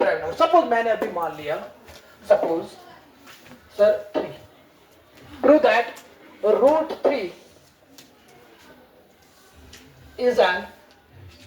number. Suppose मैंने अभी मान लिया, suppose sir 3. Prove that root 3 is an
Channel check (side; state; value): both; identical; correlation 1.00